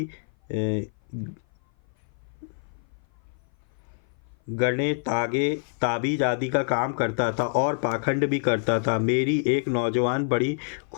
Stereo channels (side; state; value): right; silent; 56 dB below the other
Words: गणे तागे ताबीज आदि का काम करता था और पाखंड भी करता था। मेरी एक नौजवान बड़ी